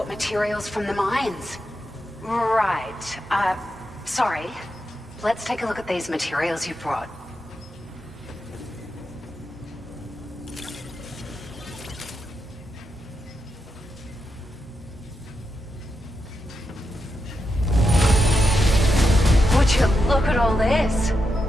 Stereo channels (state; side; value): normal; both; correlation 0.86